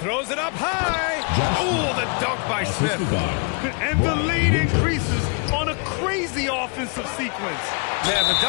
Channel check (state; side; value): quieter; right; 36.7 dB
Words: it up high. Oh, the dunk by Smith. And the lead increases on a crazy offensive sequence. Man, the